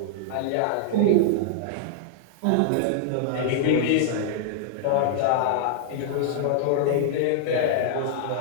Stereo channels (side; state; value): both; different; correlation -0.01